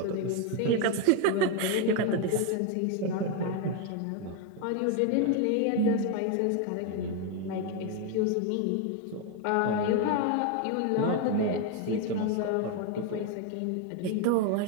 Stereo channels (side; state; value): both; different; correlation 0.02